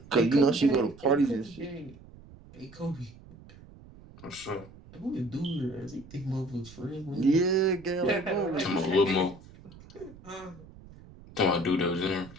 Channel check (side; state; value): right; noise; rumble, 20 dB below the sound